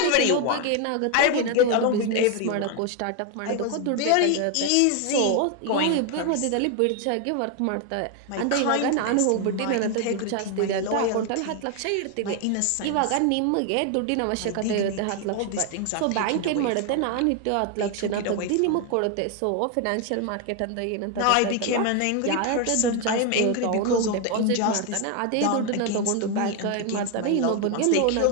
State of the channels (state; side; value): different; both; correlation 0.01